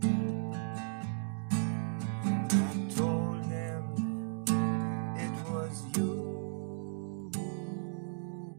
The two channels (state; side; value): silent; left; digital silence